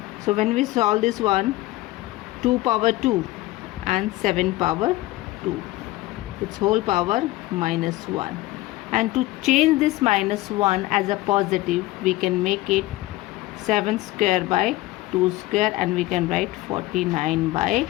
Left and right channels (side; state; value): right; quieter; 18.2 dB